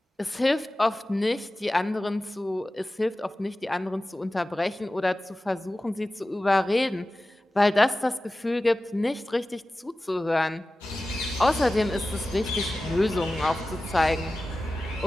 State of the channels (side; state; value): both; normal; correlation 0.96